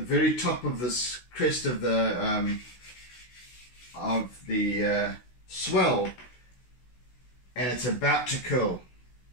top of this crest of the swell, and it's about to curl.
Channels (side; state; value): right; late; 16 ms